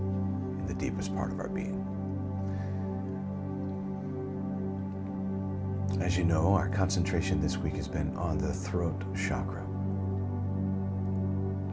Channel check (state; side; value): identical; both; correlation 1.00